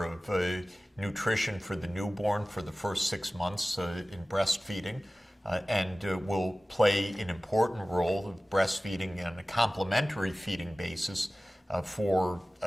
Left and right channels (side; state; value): both; normal; correlation 0.97